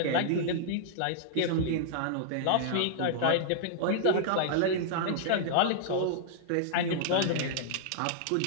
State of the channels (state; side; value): different; both; correlation -0.01